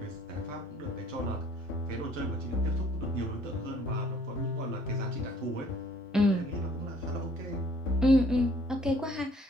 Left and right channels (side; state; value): both; normal; correlation 0.59